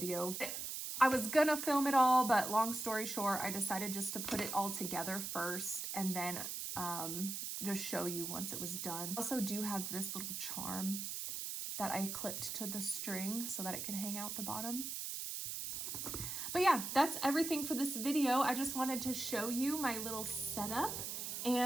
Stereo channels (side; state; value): right; noise; hiss, 4 dB below the sound